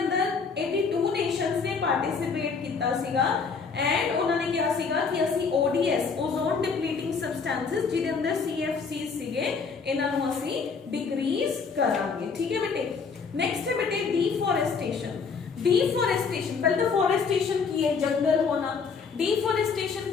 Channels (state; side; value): quieter; right; 5.3 dB